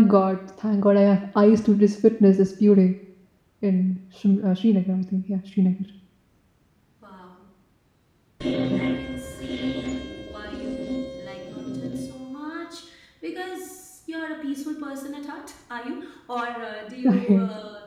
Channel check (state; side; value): identical; both; correlation 1.00